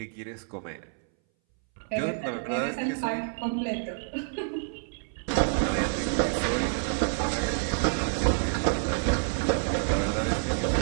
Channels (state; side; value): silent; left; 59 dB below the other